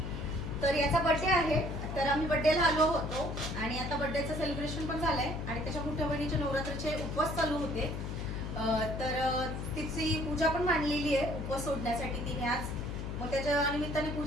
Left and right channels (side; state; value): left; noise; hum, 5 dB below the sound